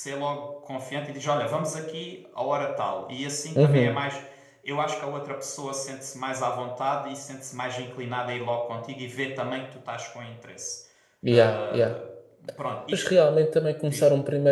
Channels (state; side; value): identical; both; correlation 1.00